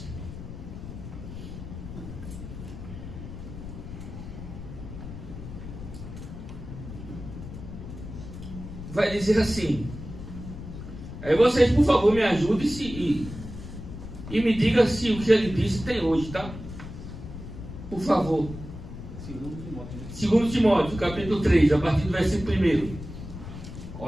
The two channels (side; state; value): left; noise; rumble, 11 dB below the sound